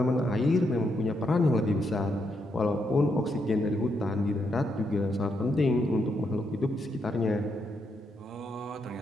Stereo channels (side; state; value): both; normal; correlation 0.79